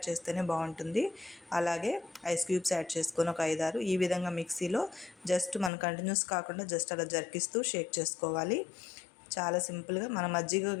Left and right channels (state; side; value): drops out; right; at 5.7 s